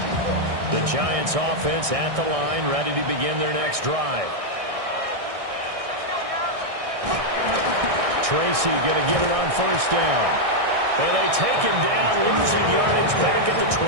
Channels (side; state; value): left; late; 1.6 ms